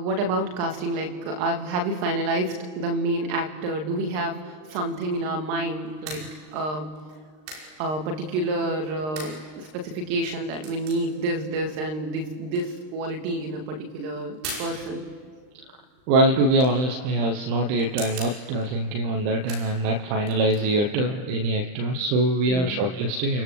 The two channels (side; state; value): left; late; 39 ms